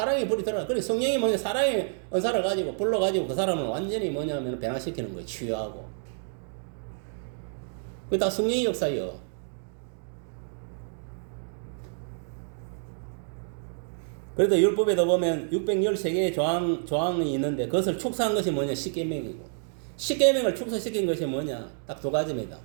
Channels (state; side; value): silent; left; digital silence